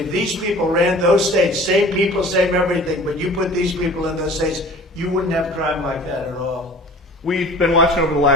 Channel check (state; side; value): normal; both; correlation 0.45